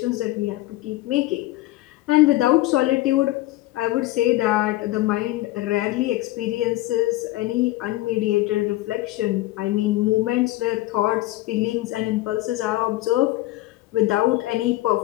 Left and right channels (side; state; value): right; quieter; 17.4 dB